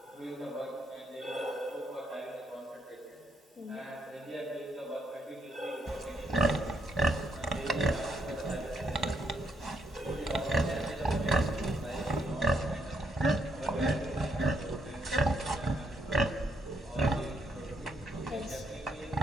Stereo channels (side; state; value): both; normal; correlation 0.75